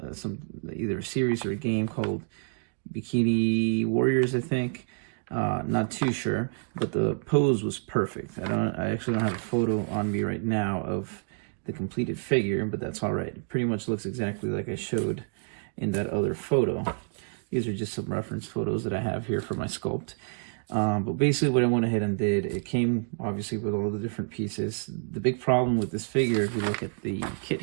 either a series or a game called Bikini Warriors, I think. Not too sure, but the pose was perfect. I actually don't have a photo on me right now of the completed figure, but that's all right. It pretty much looks exactly like I showed in that other photo. These are just some reference photos that I have here for my sculpt. But basically what I went ahead and did, it came obviously with all the different pieces. The big problem with this figure, if you look at the kit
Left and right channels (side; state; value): left; silent; 59 dB below the other